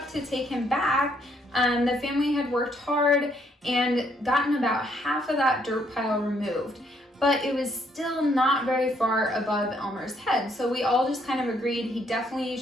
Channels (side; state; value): both; normal; correlation 0.70